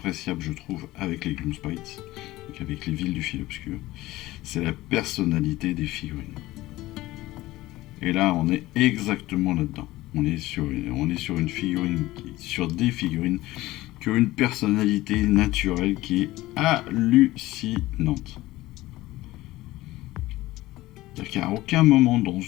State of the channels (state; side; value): quieter; right; 17.7 dB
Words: je trouve, avec les Gloomspites, donc avec les villes du fil obscur, c'est la personnalité des figurines. Et là, on est exactement là-dedans. On est sur une figurine, sur des figurines qui ont une personnalité naturelle qui est hallucinante. C'est-à-dire qu'à aucun moment, dans